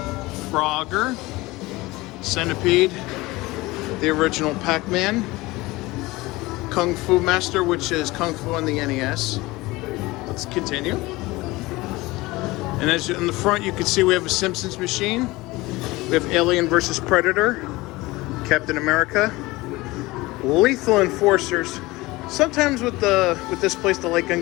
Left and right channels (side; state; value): right; quieter; 20.8 dB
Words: Frogger, Centipede, the original Pac-Man, Kung Fu Master, which is Kung Fu on the NES. Let's continue. And as in the front, you can see we have a Simpsons machine. We have Alien vs. Predator, Captain America, Lethal Enforcers. Sometimes with this place, the light gun